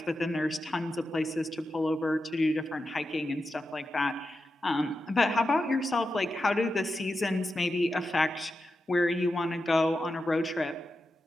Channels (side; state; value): both; normal; correlation 0.90